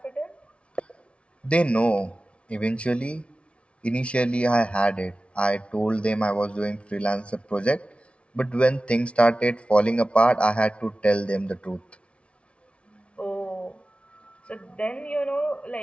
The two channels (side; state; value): right; late; 0.060 ms